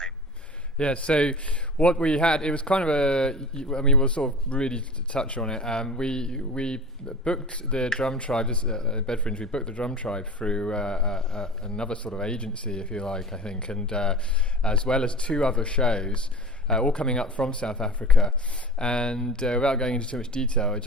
Yeah, so what we had, it was kind of we'll sort of really touch on it. We booked the Drum Tribe, Bedfringe, we booked the Drum Tribe through another sort of agency, if you like, I think, and as well as two other shows, all coming up from South Africa. And without going into too much detail, it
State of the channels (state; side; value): normal; both; correlation 0.36